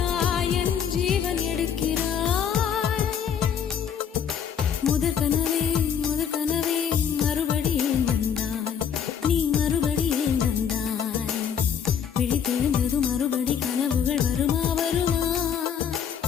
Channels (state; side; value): quieter; right; 8.1 dB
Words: என் ஜீவன் எடுக்கிறாய். முதற் கனவே மறுபடியும் வந்தாய், நீ மறுபடியும் வந்தாய். விழித்தெழுந்ததும் மறுபடி கனவுகள் வருமா?